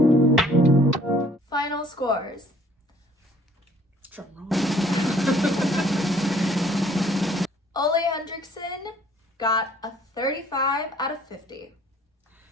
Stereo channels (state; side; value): normal; both; correlation 0.58